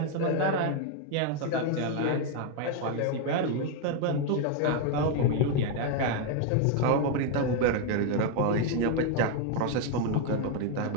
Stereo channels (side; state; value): both; different; correlation 0.01